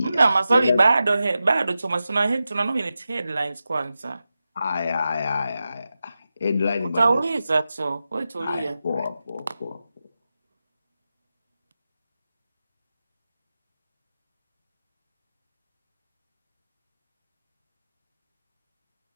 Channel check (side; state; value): both; inverted; correlation -0.92